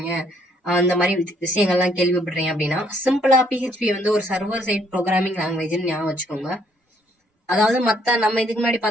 அந்த மாதிரி விஷயங்கள்லாம் கேள்விப்படுறீங்க அப்படின்னா சிம்பிளா PHP ஒரு சர்வர் சைட் ப்ரோக்ராமிங் லாங்குவேஜ்னு ஞாபகம் வச்சுக்கோங்க. அதாவது மத்த நம்ம இதுக்கு முன்னாடி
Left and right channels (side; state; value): both; normal; correlation 0.67